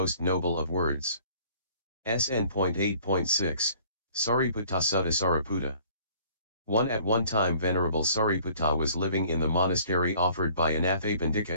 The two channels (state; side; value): inverted; both; correlation -0.55